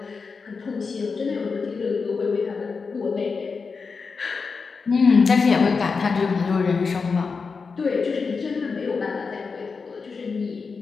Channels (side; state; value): right; quieter; 4.9 dB